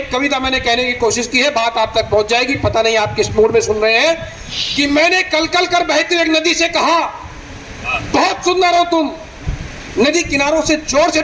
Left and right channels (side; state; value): both; identical; correlation 1.00